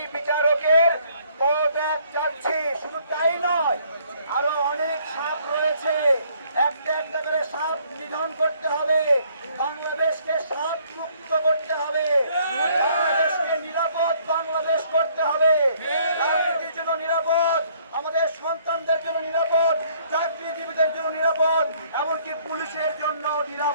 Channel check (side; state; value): both; inverted; correlation -0.63